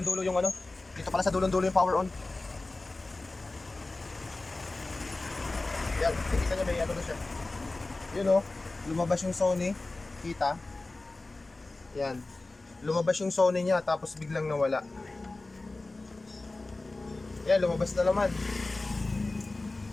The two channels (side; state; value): right; quieter; 3.1 dB